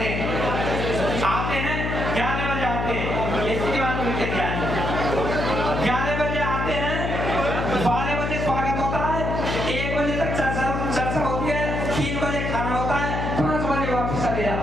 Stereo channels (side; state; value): left; noise; hum, 2 dB below the sound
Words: हैं। आते हैं 11 बजे आते हैं, इसकी बात उनके ध्यान 11 बजे आते हैं, 12 बजे स्वागत होता है, 1 बजे तक चर्चा होती है, 3 बजे खाना होता है, 5 बजे वापस चले